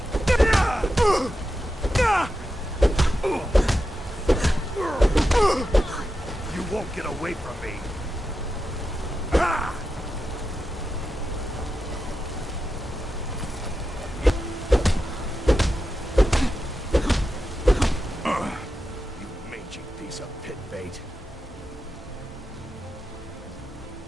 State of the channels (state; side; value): normal; both; correlation 0.90